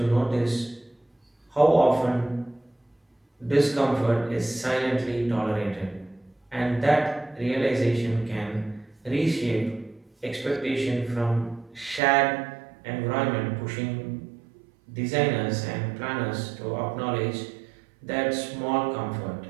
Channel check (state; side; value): drops out; left; at 12.0 s